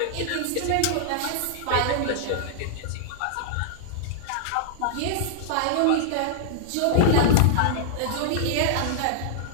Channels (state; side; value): different; both; correlation -0.01